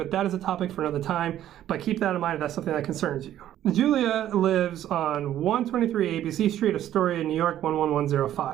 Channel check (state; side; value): quieter; left; 12.0 dB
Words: that is a topic for another time. But keep that in mind if that's something that concerns you. Julia lives on 123 ABC Street, Astoria, New York,